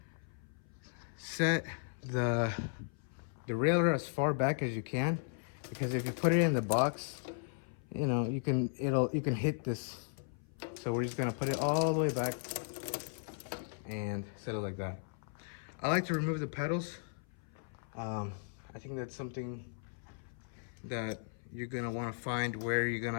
set the derailleur as far back as you can, because if you put it in the box, you know, you can hit this. So we're just gonna put it all the way back and set it like that. I like to remove the pedals. I think that's something that you're gonna want to find where you're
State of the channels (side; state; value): right; silent; 53 dB below the other